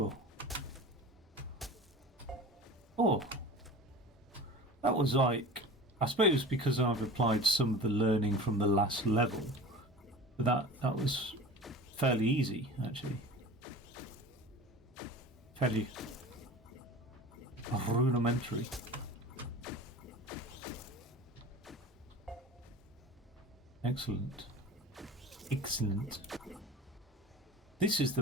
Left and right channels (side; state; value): both; normal; correlation 0.37